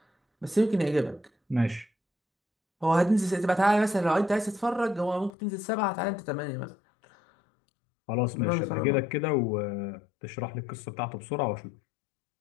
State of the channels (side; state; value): right; drops out; at 5.3 s